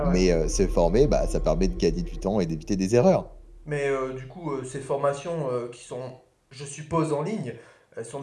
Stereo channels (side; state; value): both; identical; correlation 1.00